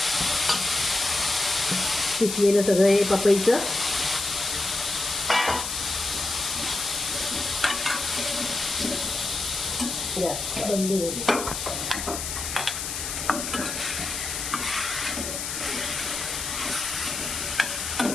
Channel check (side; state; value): left; noise; hiss, 4 dB below the sound